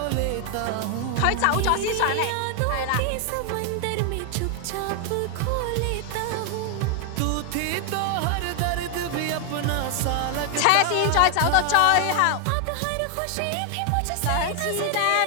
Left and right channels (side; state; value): both; different; correlation 0.00